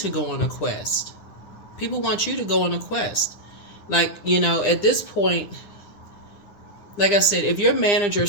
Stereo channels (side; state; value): right; late; 9.9 ms